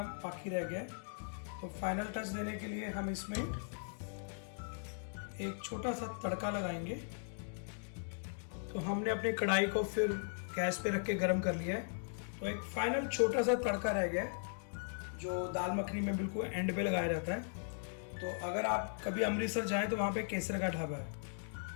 बाकी रह गया है। तो फाइनल टच देने के लिए हम इसमें एक छोटा सा तड़का लगाएंगे। तो हमने अपनी कढ़ाई को फिर गैस पे रख के गर्म कर लिया है। तो एक फाइनल छोटा सा तड़का रह गया है जो दाल मखनी में बिल्कुल एंड पे लगाया जाता है। तो अगर आप कभी अमृतसर जाएं तो वहाँ पे केसर का ढाबा है।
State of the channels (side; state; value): right; silent; digital silence